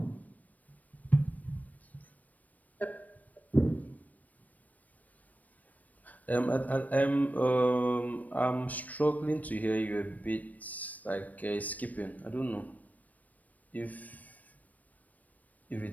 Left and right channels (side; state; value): right; late; 0.075 ms